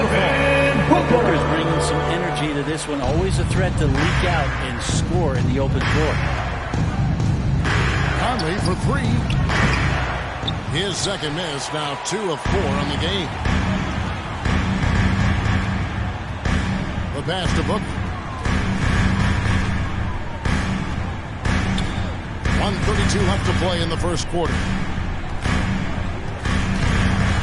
Booker is bringing some energy to this one. Always a threat to leak out and score in the open floor. Conley for 3. His second miss. Now 2 of 4 on the game. The pass to Booker. 1:32 left to play in the first quarter.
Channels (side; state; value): both; identical; correlation 1.00